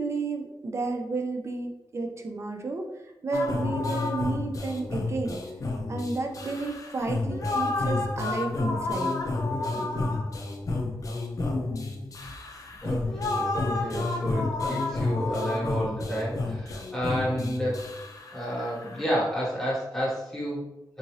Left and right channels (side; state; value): both; normal; correlation 0.80